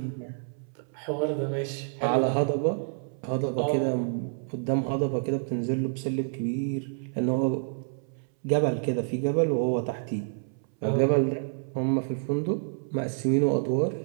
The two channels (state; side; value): silent; left; 59 dB below the other